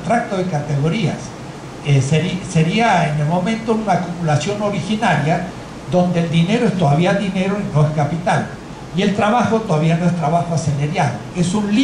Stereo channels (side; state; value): both; identical; correlation 1.00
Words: de categorías. Sería en el momento una acumulación originaria donde el dinero es todavía dinero y no es capital, y el trabajo todavía no es trabajo asalariado. Es un